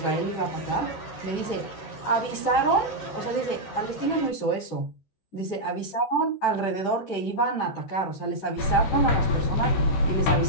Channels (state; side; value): late; right; 13 ms